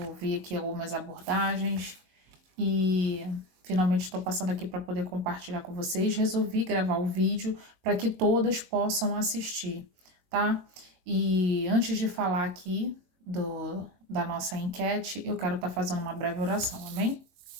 vi aqui algumas abordagens e finalmente estou passando aqui para poder compartilhar com vocês. Resolvi gravar o vídeo para que todas possam assistir, tá? E antes de falar aqui da nossa enquete, eu quero estar fazendo uma breve oração, amém?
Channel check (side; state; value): left; late; 22 ms